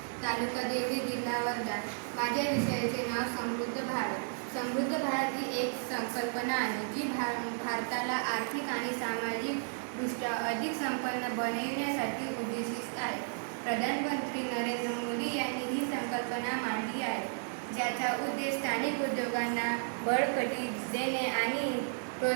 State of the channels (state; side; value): silent; left; digital silence